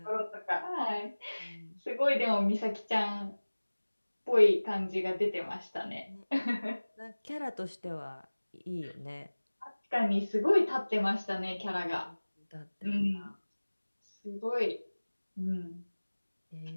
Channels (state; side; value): inverted; both; correlation -1.00